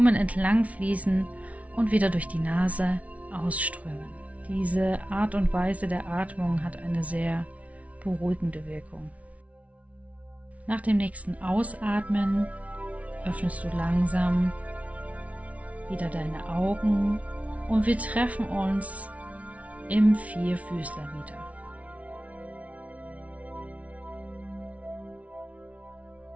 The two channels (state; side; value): late; left; 0.067 ms